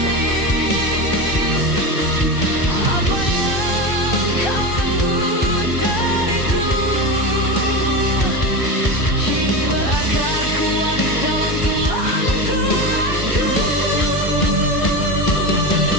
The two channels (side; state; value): right; late; 1.3 ms